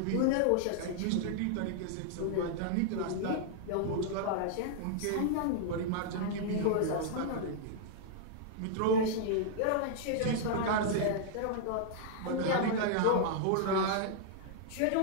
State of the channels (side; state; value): both; different; correlation -0.01